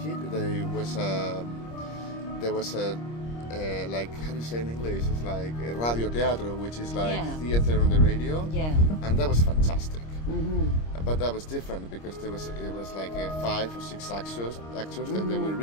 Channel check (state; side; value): late; right; 26 ms